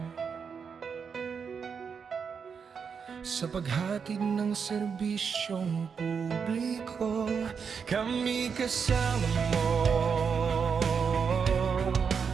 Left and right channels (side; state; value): left; quieter; 6.3 dB